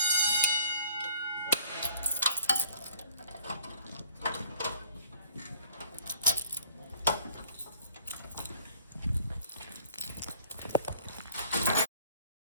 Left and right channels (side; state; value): both; inverted; correlation -0.55